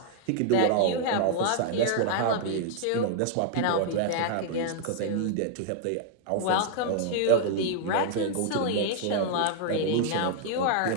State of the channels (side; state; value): both; different; correlation -0.01